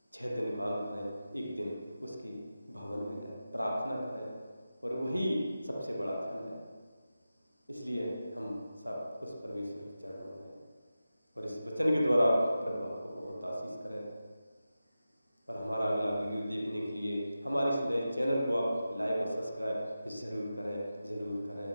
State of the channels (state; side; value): inverted; both; correlation -0.93